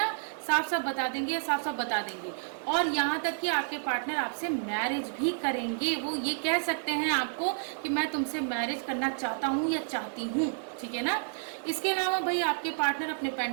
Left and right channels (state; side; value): silent; left; 58 dB below the other